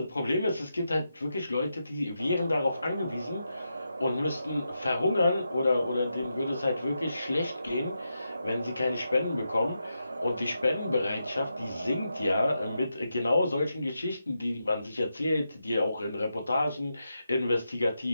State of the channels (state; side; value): inverted; both; correlation -0.86